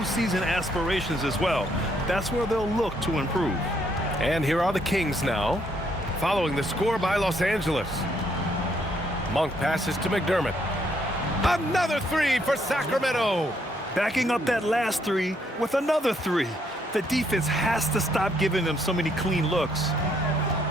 aspirations as well. That's where they'll look to improve. And here are the Kings now, following the score by Los Angeles. Monk passes to McDermott. Another 3 for Sacramento. Backing up that last 3 with another 3. The defense has to stop giving them so many clean looks.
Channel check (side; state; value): both; normal; correlation 0.71